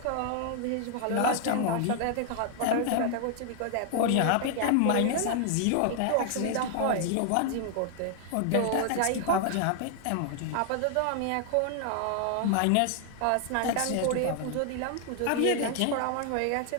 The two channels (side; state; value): both; different; correlation 0.00